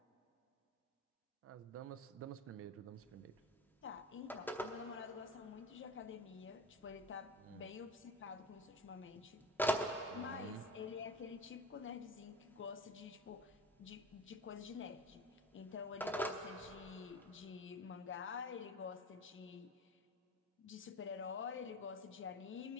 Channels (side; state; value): both; normal; correlation 0.33